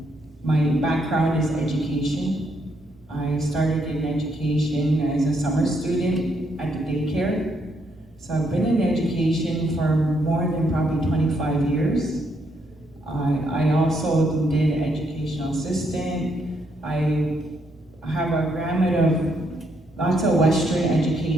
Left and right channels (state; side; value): normal; both; correlation 0.75